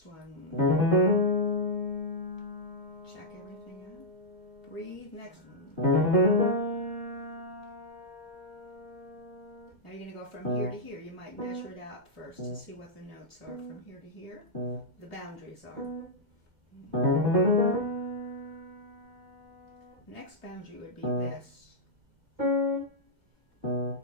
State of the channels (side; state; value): left; late; 2.2 ms